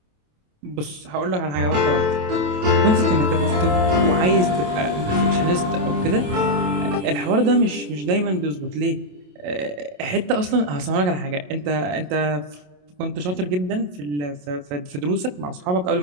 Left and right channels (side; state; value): left; late; 27 ms